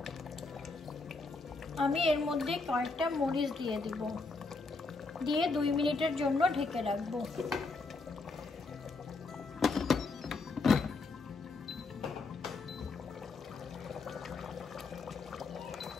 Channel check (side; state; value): right; quieter; 3.8 dB